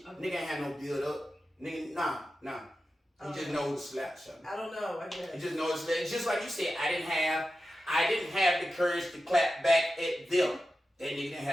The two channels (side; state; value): both; normal; correlation 0.92